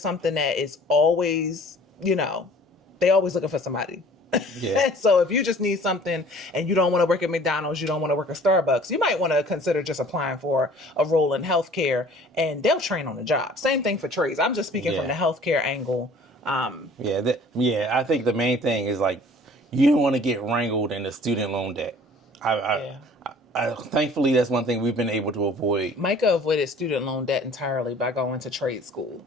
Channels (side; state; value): both; normal; correlation 0.50